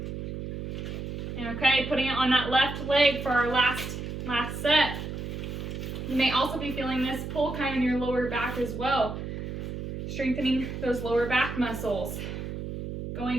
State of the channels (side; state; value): right; noise; hum, 6 dB below the sound